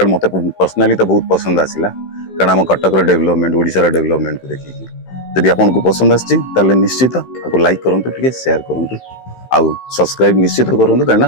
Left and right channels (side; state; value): right; late; 15 ms